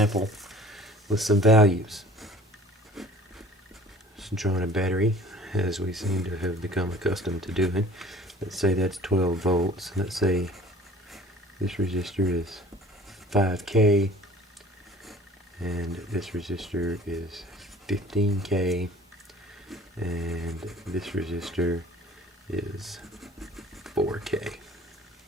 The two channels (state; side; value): normal; both; correlation 0.48